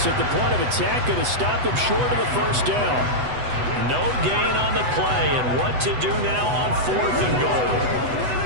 at the point of attack, going to stop him short of the first down. No gain on the play, and what to do now on 4th and goal.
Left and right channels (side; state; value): left; late; 8.0 ms